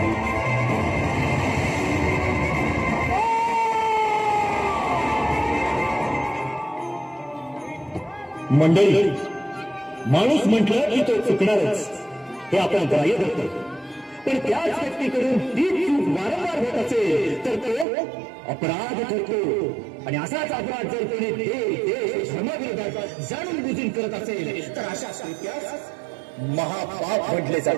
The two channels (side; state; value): left; drops out; at 17.9 s